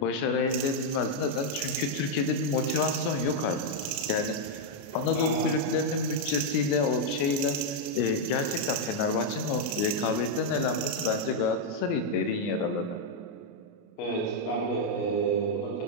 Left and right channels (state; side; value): late; right; 28 ms